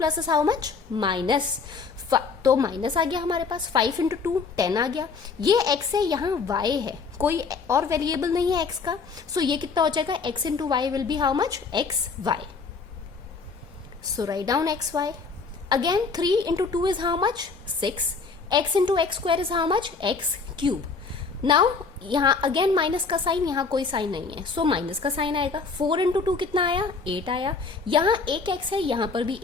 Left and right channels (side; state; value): right; quieter; 4.7 dB